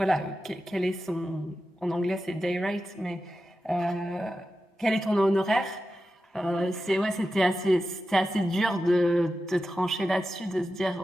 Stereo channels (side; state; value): both; normal; correlation 0.92